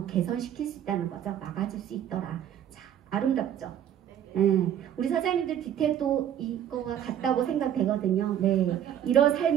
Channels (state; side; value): quieter; left; 10.2 dB